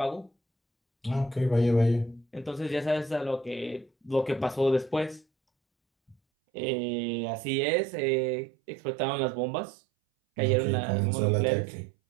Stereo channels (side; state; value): left; drops out; at 6.2 s